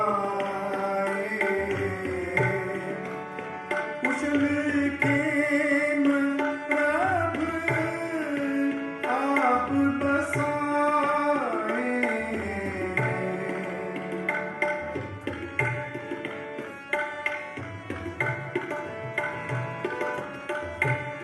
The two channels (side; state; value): both; identical; correlation 1.00